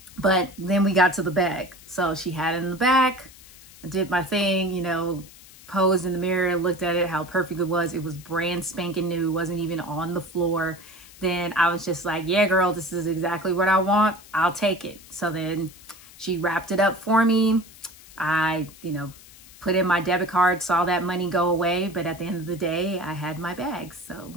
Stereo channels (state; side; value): noise; left; hiss, 21 dB below the sound